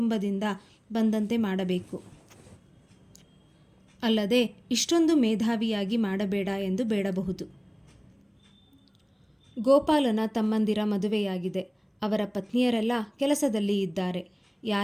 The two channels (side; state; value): both; identical; correlation 1.00